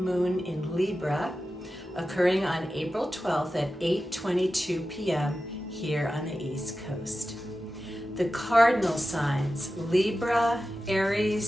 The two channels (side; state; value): both; normal; correlation 0.93